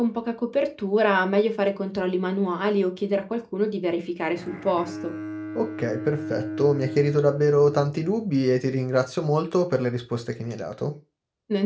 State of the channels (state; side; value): identical; both; correlation 1.00